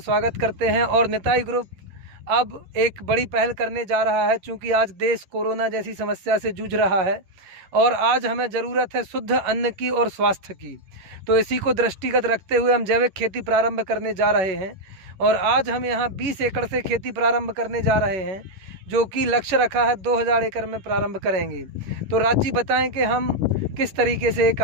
करते हैं। और निताई ग्रुप अब एक बड़ी पहल करने जा रहा है, चूँकि आज देश कोरोना जैसी समस्या से जूझ रहा है और आज हमें ज़रूरत है शुद्ध अन्न की और स्वास्थ्य की। तो इसी को दृष्टिगत रखते हुए हम जैविक खेती प्रारंभ करने जा रहे हैं। और आज हम यहाँ 20 एकड़ से खेती प्रारंभ करने जा रहे हैं, जो कि लक्ष्य रखा है 2000 एकड़ में प्रारंभ करेंगे। तो राज जी बताएं कि हम किस तरीके से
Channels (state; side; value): late; left; 11 ms